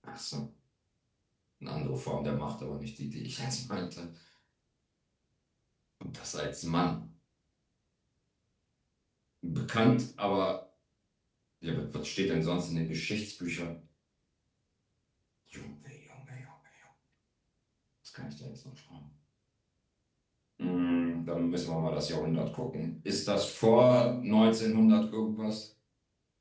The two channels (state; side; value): identical; both; correlation 1.00